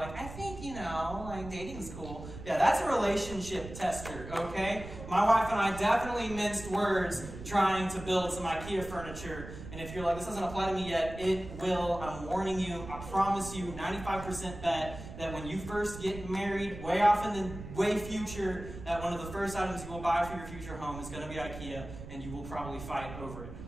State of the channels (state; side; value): noise; right; rumble, 12 dB below the sound